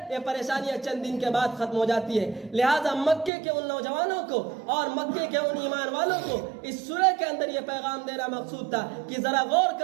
یہ پریشانیاں چند دن کے بعد ختم ہو جاتی ہے. لہذا مکے کے ان نوجوانوں کو اور مکے کے ان ایمان والوں کو اس سورہ کے اندر یہ پیغام دینا مقصود تھا کہ ذرا غور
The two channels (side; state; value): left; drops out; at 3.3 s